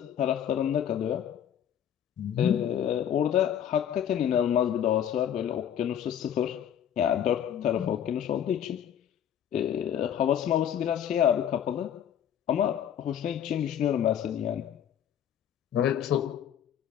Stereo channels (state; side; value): quieter; right; 9.6 dB